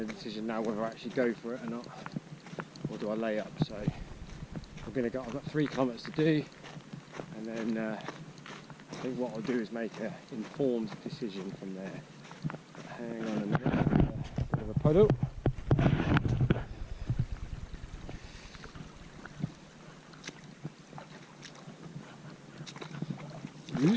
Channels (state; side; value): identical; both; correlation 1.00